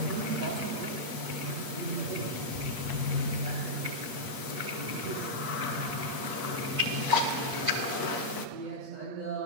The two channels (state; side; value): late; left; 8.6 ms